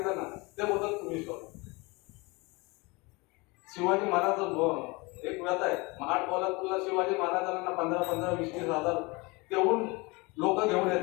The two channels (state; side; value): quieter; right; 25.9 dB